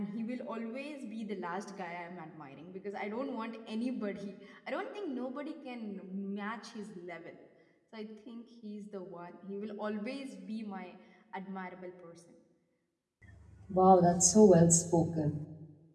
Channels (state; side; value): identical; both; correlation 1.00